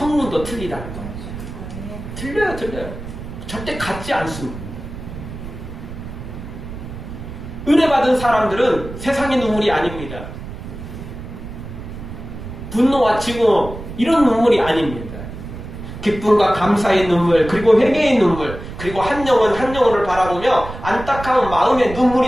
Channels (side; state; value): right; noise; rumble, 11 dB below the sound